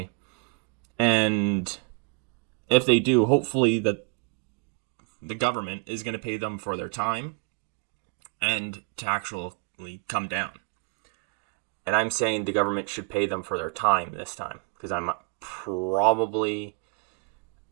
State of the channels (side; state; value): left; quieter; 37.8 dB